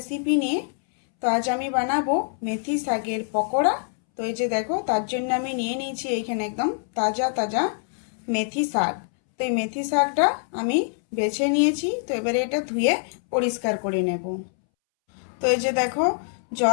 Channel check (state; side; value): silent; right; 62 dB below the other